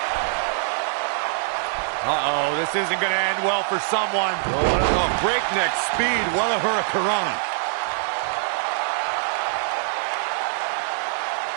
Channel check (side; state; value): left; silent; digital silence